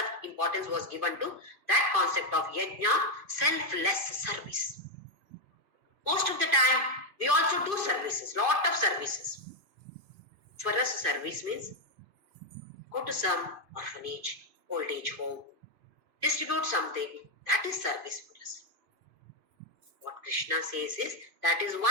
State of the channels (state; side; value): late; left; 2.4 ms